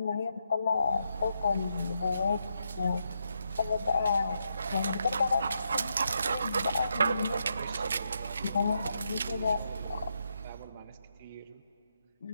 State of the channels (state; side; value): inverted; both; correlation -0.81